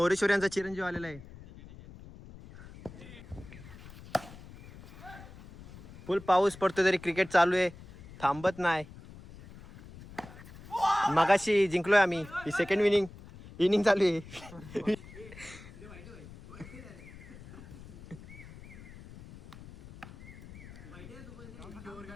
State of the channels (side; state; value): left; noise; rumble, 17 dB below the sound